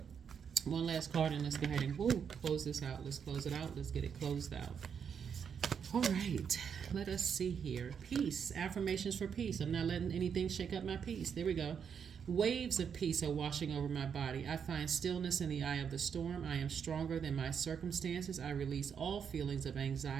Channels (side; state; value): left; quieter; 7.2 dB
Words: One last card, and let's go ahead and close this out. Let's close it out. Let's get it closed out. All right. Let us see here. Peace. Affirmations for peace. I'm not letting anything shake up my peace. There we go. Waves of peace are washing over my body. I find stillness in the eye of the storm. I am stronger than my circumstances. I release all feelings of